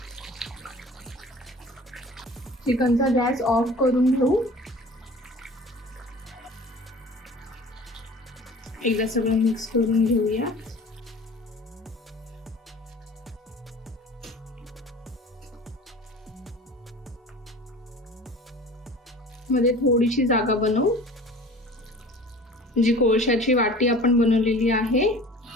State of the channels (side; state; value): both; normal; correlation 0.43